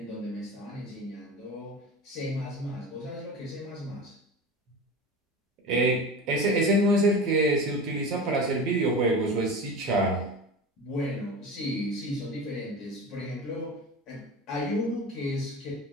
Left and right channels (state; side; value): normal; both; correlation 0.31